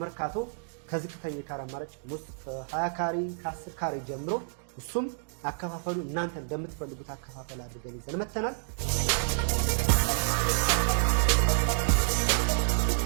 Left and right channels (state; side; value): silent; left; digital silence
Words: ከዝቅተኛ ካሬ አማራጭ ውስጥ ከ20 ካሬ ከ10 ካሬ ጀምሮ እሱም አከፋፈሉ እናንተ እንደምትፈልጉት አከፋፈል አድርገን ይዘን መተናል።